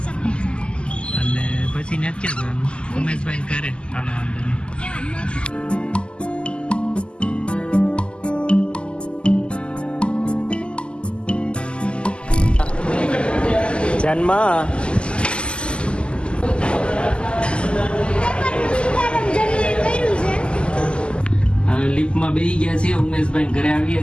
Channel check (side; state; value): right; late; 0.051 ms